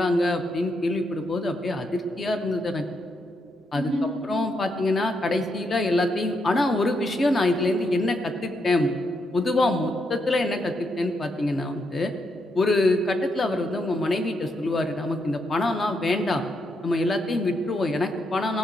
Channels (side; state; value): both; normal; correlation 0.80